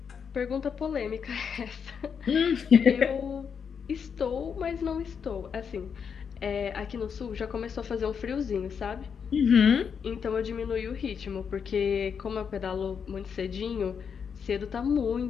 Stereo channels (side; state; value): right; quieter; 6.8 dB